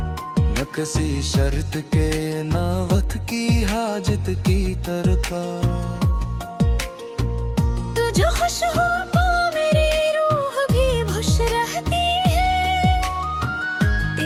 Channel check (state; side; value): identical; both; correlation 1.00